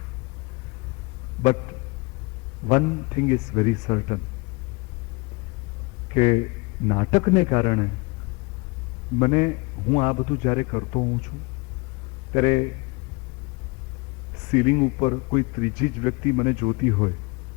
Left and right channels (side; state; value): right; quieter; 27.4 dB